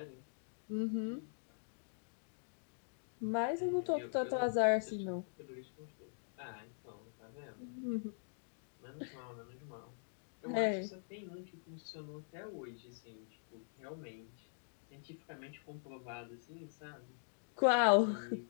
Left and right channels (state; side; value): silent; right; digital silence